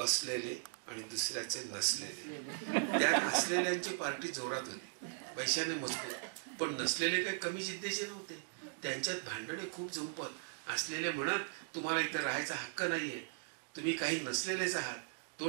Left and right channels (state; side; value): silent; left; digital silence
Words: असलेले आणि दुसऱ्याचे नसलेले. त्यात असलेल्यांची पार्टी जोरात होती, पैशाने मजबूत. पण नसलेले काही कमी जिद्दीचे नव्हते. त्यांच्यात भांडणे खूप झुंपत. असलेले म्हणत, तुम्हाला इथं राहायचा हक्क नाहीये, तुम्ही काही नसलेलेच आहात,